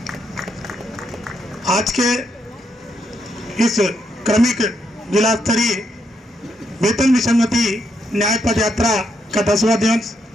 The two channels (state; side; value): normal; both; correlation 0.78